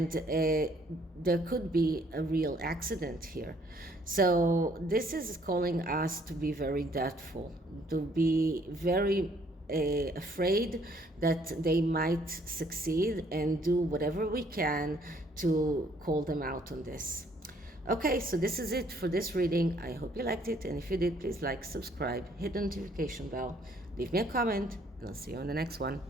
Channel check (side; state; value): both; normal; correlation 0.64